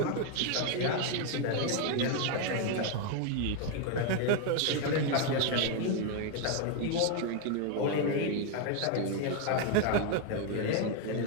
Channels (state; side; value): different; both; correlation 0.01